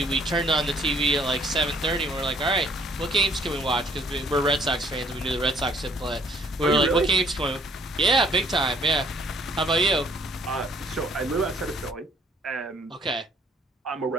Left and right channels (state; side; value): normal; both; correlation 0.62